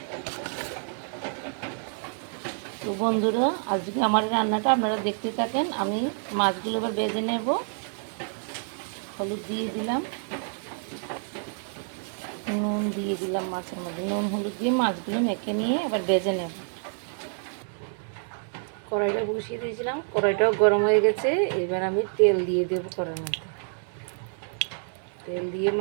তো বন্ধুরা, আজকে আমার রান্নাটা আপনারা দেখতে থাকেন। আমি মাছগুলো এবার ভেজে নেব। হলুদ দিয়ে দিলাম, নুন দিয়ে দিলাম, মাছের মধ্যে নুন হলুদ দিয়ে মাছগুলো মেখে নিয়ে এবার ভেজে নেব। কড়াইটা বসিয়ে দিয়েছিলাম, কড়াইটাও গরম হয়ে গেছে। এবার আমি তেল দিয়ে দেবো কড়াইয়ের মধ্যে। তেল দিয়ে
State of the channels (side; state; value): left; silent; 60 dB below the other